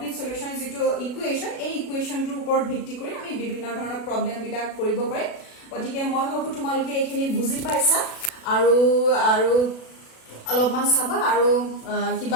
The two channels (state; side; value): late; right; 36 ms